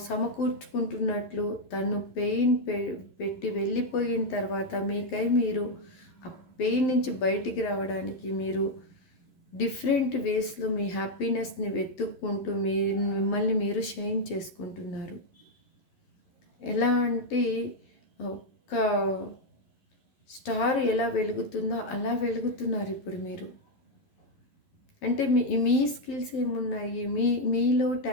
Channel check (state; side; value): late; right; 11 ms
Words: సమకూర్చుకుంటున్నట్లు తను పెయిన్ పెట్టి వెళ్ళిపోయిన తర్వాత మీకై మీరు ఆ పెయిన్ నుంచి బయటికి రావడానికి మీరు డిఫరెంట్ వేస్లో మీ హ్యాపీనెస్ని వెతుక్కుంటూ మిమ్మల్ని మీరు షైన్ చేసుకుంటున్నారు. ఎలా అంటే ఒక స్టార్ ఎలా వెలుగుతుందో అలా వెలుగుతున్నారు ఇప్పుడు మీరు. అంటే మీ స్కిల్స్ ఏమున్నాయి, మీలో